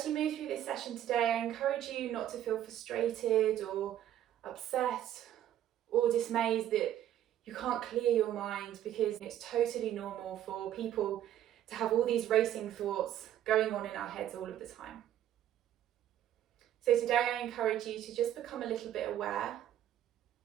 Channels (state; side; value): quieter; left; 11.5 dB